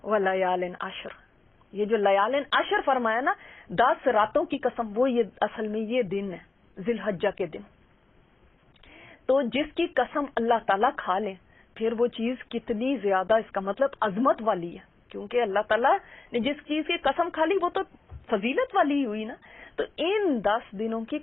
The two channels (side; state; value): right; quieter; 3.4 dB